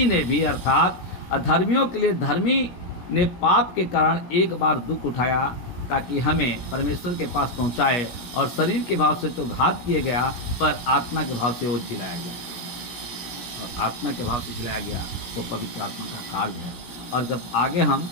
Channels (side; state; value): right; late; 17 ms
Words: ने भी अर्थात अधर्मियों के लिए धर्मी ने पाप के कारण एक बार दुख उठाया, ताकि हमें परमेश्वर के पास पहुंचाए, और शरीर के भाव से तो घात किए गया, पर आत्मा के भाव से वो जिलाया गया। और आत्मा के भाव से जिलाया गया वो पवित्र आत्मा का कार्य है। और जब आगे हम